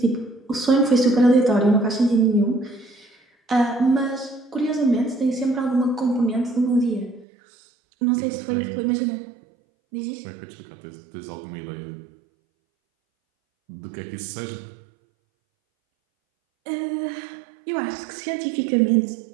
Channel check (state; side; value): drops out; left; at 7.2 s